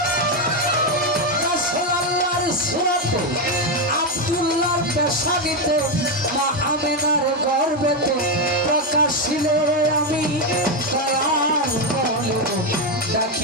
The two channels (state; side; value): normal; both; correlation 0.07